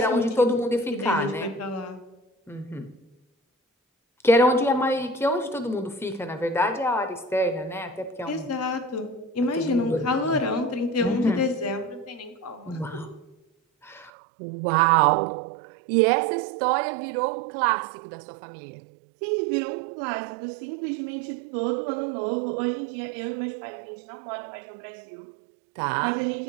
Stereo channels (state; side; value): drops out; left; at 14.1 s